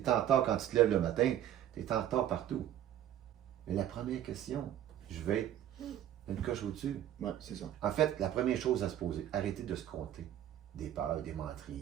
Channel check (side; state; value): left; quieter; 11.4 dB